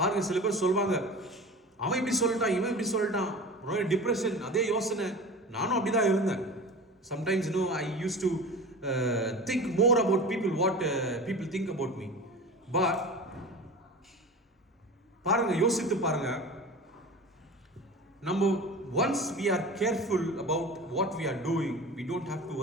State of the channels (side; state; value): both; normal; correlation 0.35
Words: சில பேர் சொல்வாங்க, அவன் இப்படி சொல்லிட்டான், இவன் இப்படி சொல்லிட்டான், டிப்ரெஷன், அதே யோசனை. நானும் அப்படிதான் இருந்தேன். Sometimes I used to think more about what people think about me. But பாருங்க, யோசித்து பாருங்க, நம்ம once we are careful about what we are doing, we don't have to